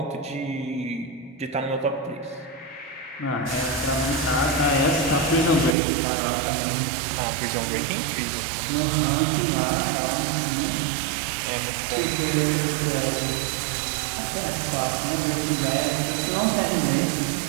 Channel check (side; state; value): left; drops out; at 5.8 s